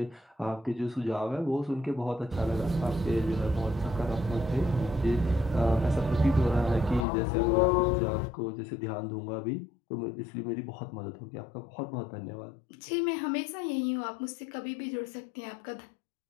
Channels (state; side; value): drops out; right; at 7.1 s